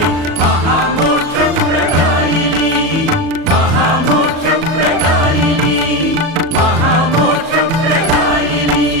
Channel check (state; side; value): late; left; 37 ms